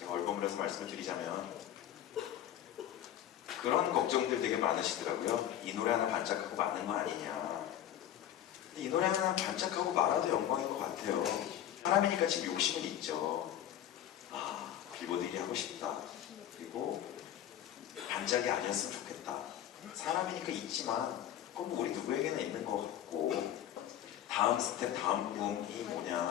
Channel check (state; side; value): quieter; right; 11.2 dB